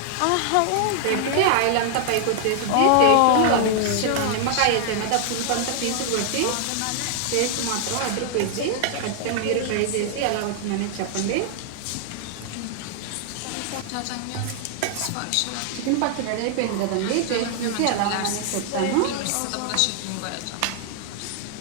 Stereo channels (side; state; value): both; different; correlation -0.01